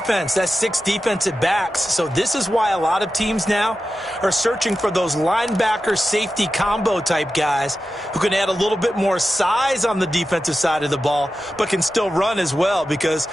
That's 6 defensive backs. So this is why a lot of teams now are searching for those linebacker safety combo type guys who can add a little bit more size on the defensive side of the ball, but can still run as well. Because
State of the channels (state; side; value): normal; both; correlation 0.92